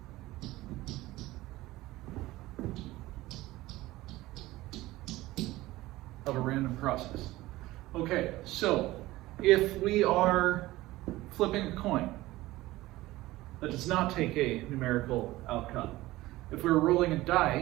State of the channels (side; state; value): left; quieter; 17.8 dB